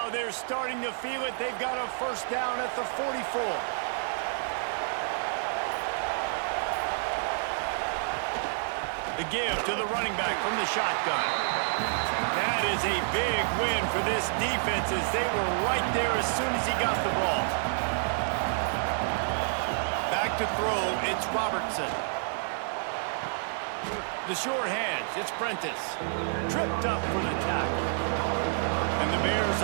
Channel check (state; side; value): silent; left; digital silence